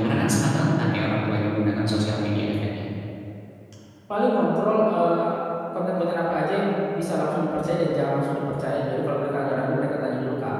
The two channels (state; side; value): identical; both; correlation 1.00